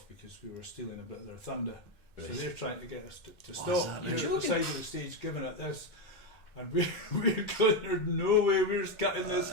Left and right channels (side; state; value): right; late; 2.1 ms